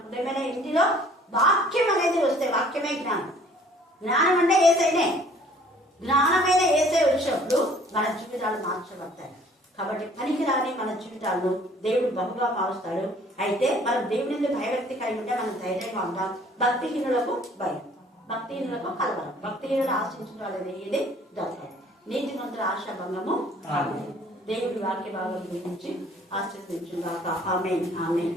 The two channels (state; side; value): normal; both; correlation 0.55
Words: హృదయమైన ఇంటిలో వాక్యం అనేది వస్తే వాక్యమే జ్ఞానం. జ్ఞానం అంటే ఏసైనే. జ్ఞానమైన ఏసై వచ్చినప్పుడు మన జీవితాలు మార్చబడతాయి. కాబట్టి పనికిరాని మన జీవితాలను దేవుడు బహుగా మారుస్తాడు. అయితే మనం దేవుని భయభక్తి కలిగి ఉంటే మనం ధైర్యంగా ఉంటాం. భక్తిహీనులకు భయం, భక్తిహీనులకు కలవరం, భక్తిహీనులు ఆశించిన వాళ్ళది ఏది దొరకదు. నీతిమంతుల ఆశాభంగము. దేవుడి వాక్య భాగం గురించి ఆశీర్వదించుగాక. ఆమేన్, ఆమేన్.